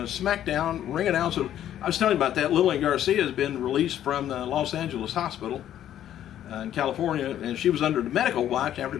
ring announcer, I was telling you about that, Lillian Garcia has been released from the Los Angeles hospital in California, and she was under the medical watch after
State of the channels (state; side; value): quieter; right; 11.3 dB